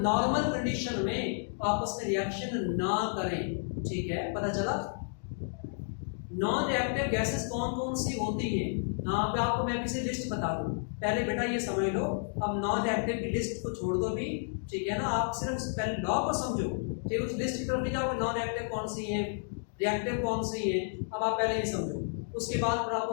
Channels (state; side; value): silent; right; digital silence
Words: कंडीशन में आपस में रिएक्शन ना करें, ठीक है। पता चला नॉन रिएक्टिव गैसेस कौन कौन सी होती हैं। यहाँ पे आपको मैं किसी लिस्ट बता दूं, पहले बेटा ये समझ लो। अब नॉन रिएक्टिव की लिस्ट को छोड़ दो भी, ठीक है ना, आप सिर्फ पहले लॉ को समझो, ठीक है। उस लिस्ट की तरफ नहीं जाओगे, नॉन रिएक्टिव कौन सी है, रिएक्टिव कौन सी है, अब आप पहले ये समझो, उसके बाद फिर आप